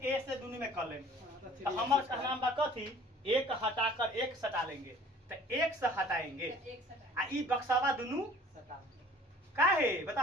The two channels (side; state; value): both; normal; correlation 0.51